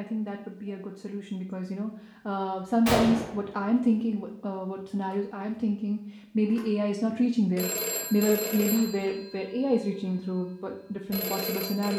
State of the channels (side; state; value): both; identical; correlation 1.00